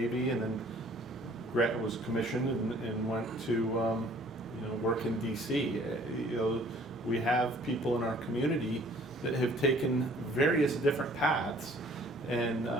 and then was commissioned and went to, work in DC. We have people in our community that have taken various different paths, and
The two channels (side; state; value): both; normal; correlation 0.55